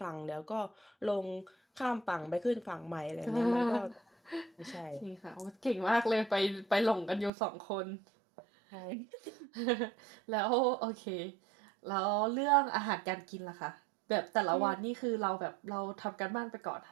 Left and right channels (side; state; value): left; drops out; at 7.3 s